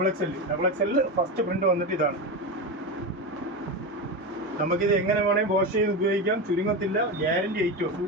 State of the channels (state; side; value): normal; both; correlation 0.18